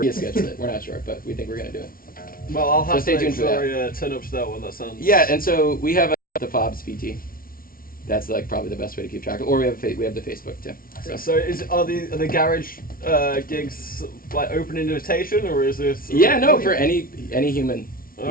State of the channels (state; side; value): late; right; 0.42 ms